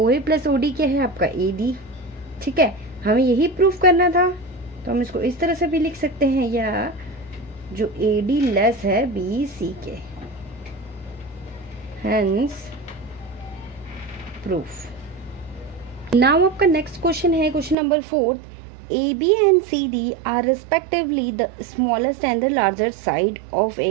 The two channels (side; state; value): left; drops out; at 17.8 s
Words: A plus O D क्या है आपका, ए डी। ठीक है, हमें यही प्रूफ करना था, तो हम इसको इस तरह से भी लिख सकते हैं, या जो ए डी लेस है बी सी के, हेंस प्रूफ। नाउ आपका नेक्स्ट क्वेश्चन है, question number 4। A B and C D are respectively the smallest and the larger side of